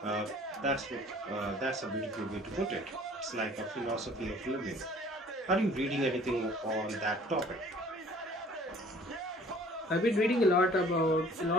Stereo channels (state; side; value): normal; both; correlation 0.53